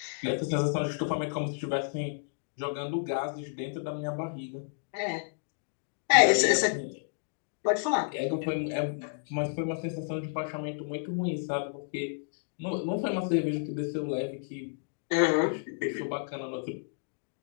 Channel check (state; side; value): silent; right; digital silence